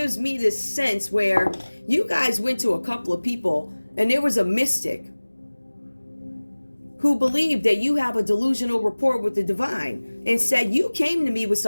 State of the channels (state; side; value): inverted; both; correlation -1.00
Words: me this sense where you guys went to a couple of people and there was a mystic who believed that you have a delusional rapport with the divine and said, you came to me with